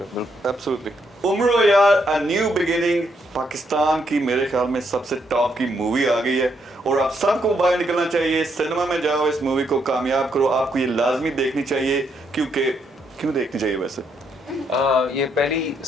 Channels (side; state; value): both; normal; correlation 0.75